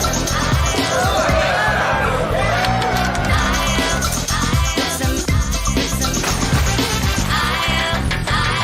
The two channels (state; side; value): identical; both; correlation 1.00